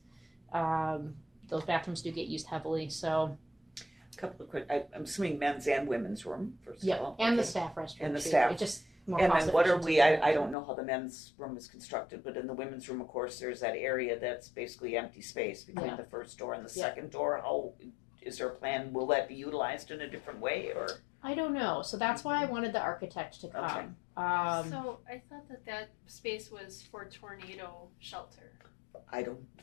Those bathrooms do get used heavily. So A couple of quick, I'm assuming men's and women's room, first of all. and the Okay. staff restroom. And the too. staff. It just more And cost then what are efficient we, to do. I don't know how the men's room is constructed, but in the women's room, of course, there's that area that's basically empty space between Yeah. the first door and the Yeah. second door. How, is there a plan, will that be utilized in a different way, or? I don't know. So that's why I wanted the architect to come. So I thought that space was for tornado shelter. I don't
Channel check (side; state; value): right; drops out; at 10.6 s